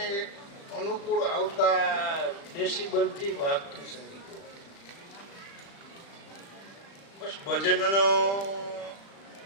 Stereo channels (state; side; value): late; right; 36 ms